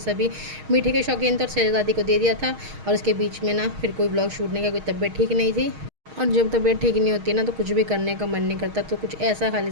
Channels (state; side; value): late; left; 6.4 ms